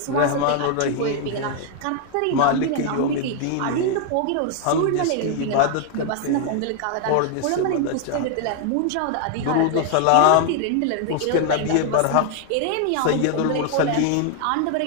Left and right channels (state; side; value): different; both; correlation 0.00